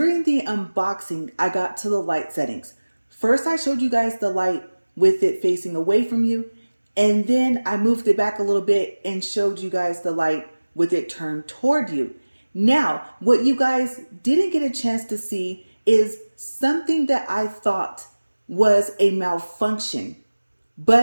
the unboxing, I got to the light settings. First, I showed you guys the light with it facing away from you. And then I moved it back a little bit and showed you guys the light with it turned toward you. Now, what you guys didn't get a chance to see is something that I thought was a malfunction,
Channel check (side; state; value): both; inverted; correlation -1.00